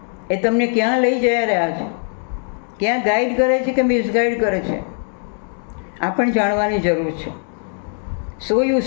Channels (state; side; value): silent; right; 58 dB below the other